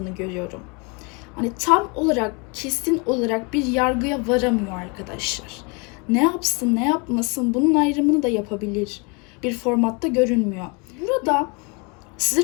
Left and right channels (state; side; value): quieter; right; 31.6 dB